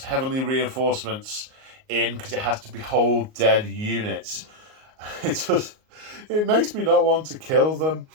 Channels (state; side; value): late; left; 38 ms